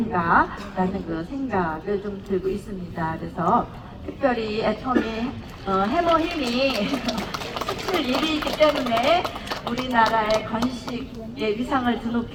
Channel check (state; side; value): identical; both; correlation 1.00